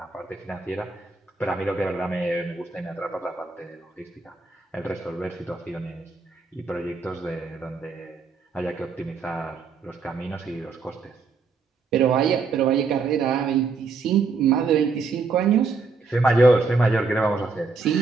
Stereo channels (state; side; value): quieter; left; 4.4 dB